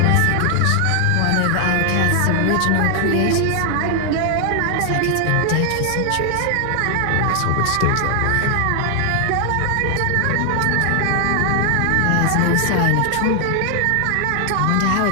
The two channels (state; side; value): different; both; correlation 0.00